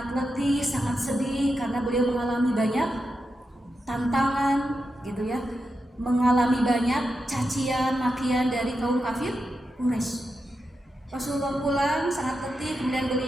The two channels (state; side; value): normal; both; correlation 0.88